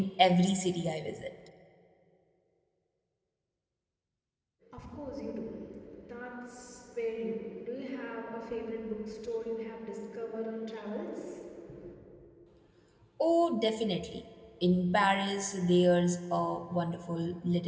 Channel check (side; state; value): both; identical; correlation 1.00